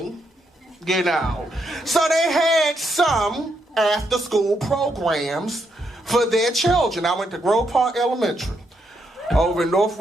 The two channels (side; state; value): both; normal; correlation 0.79